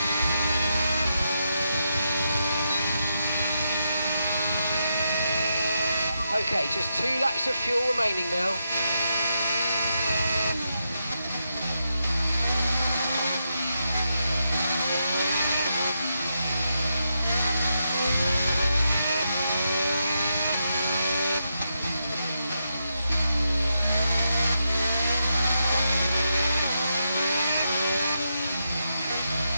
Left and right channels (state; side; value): inverted; both; correlation -0.84